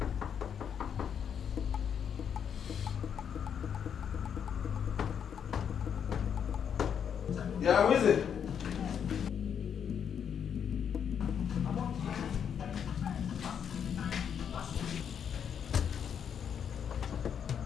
Yeah, who is it?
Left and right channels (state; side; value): quieter; right; 7.9 dB